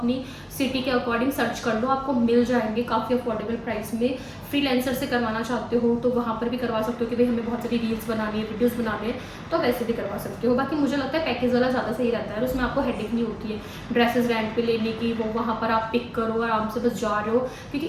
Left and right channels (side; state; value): both; identical; correlation 1.00